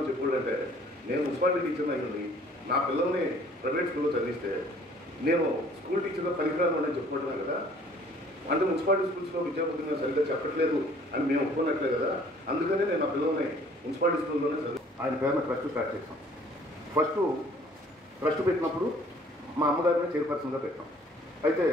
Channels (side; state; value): both; normal; correlation 0.56